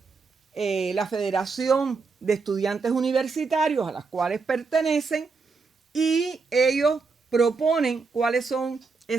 la Federación de Estudiantes Universitarios a las cuales pertenecen, y ellos proponen cuáles son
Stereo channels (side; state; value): left; quieter; 4.5 dB